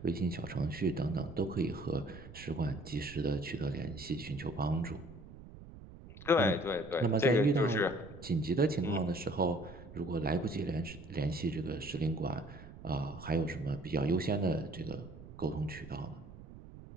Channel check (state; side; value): noise; right; rumble, 16 dB below the sound